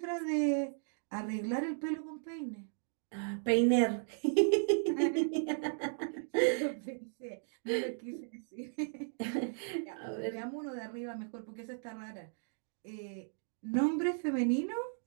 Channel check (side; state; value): left; silent; digital silence